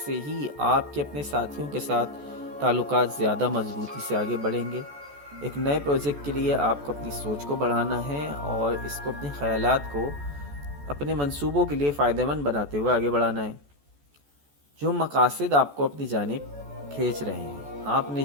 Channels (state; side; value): late; left; 14 ms